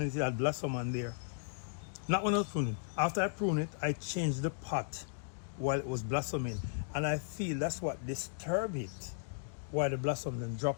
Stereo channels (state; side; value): silent; right; digital silence